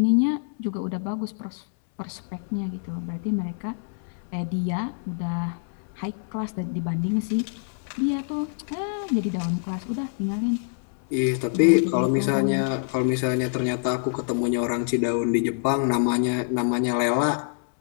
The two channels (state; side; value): silent; right; 61 dB below the other